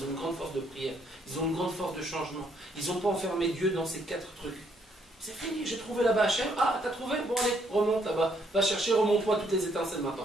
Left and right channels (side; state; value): both; normal; correlation 0.70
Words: ont une grande force de prière, ils ont une grande force de changement. Ils n'ont pas enfermé Dieu dans ces 4 trucs. C'est fini, j'ai trouvé là-bas Hachem. Ah, t'as trouvé? Bon, allez, remonte là-bas. Va chercher, remonte-toi toutes les étincelles